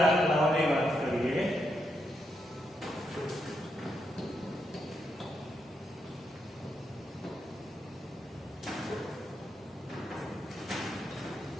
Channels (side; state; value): both; normal; correlation 0.81